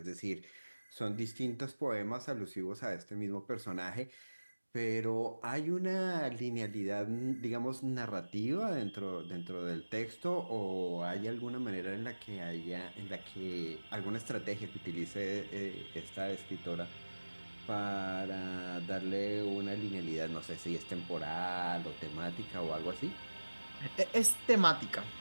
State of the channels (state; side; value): inverted; both; correlation -1.00